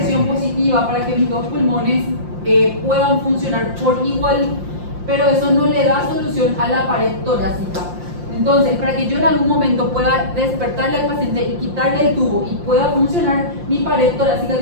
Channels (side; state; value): left; late; 5.7 ms